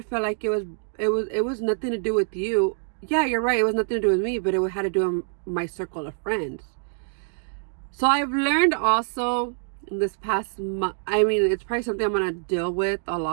feel like it was nothing to do with you. Yeah, you're right. It was nothing to do with me, but it had to do with my circle of friends. So I've learned also this past month, I mean, it's probably something I'm going to deal with a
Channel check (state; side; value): silent; left; digital silence